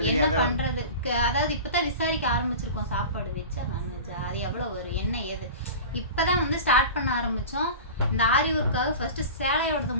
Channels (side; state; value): both; inverted; correlation -0.34